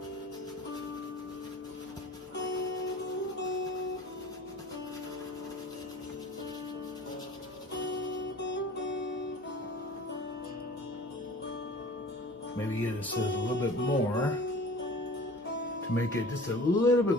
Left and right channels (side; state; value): both; normal; correlation 0.43